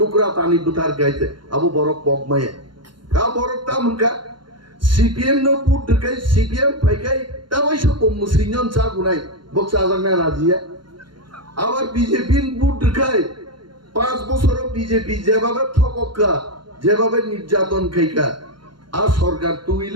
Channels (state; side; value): late; left; 0.72 ms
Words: তানি বুথার গাইতে আবু বরক পগমায়া কা বরক তামকা সিপিএম নো পুট দকাই সিপিএম ফাইকাই তাওয়াইসো মুসলিমন চা গুনাই বক্সা জাগনা রাজিয়া আবার বিজেপি বুট দকাই 5 বছর বিজেপি যেভাবে ঠককা যেভাবে নির্যাতন খাইকা আর সরকার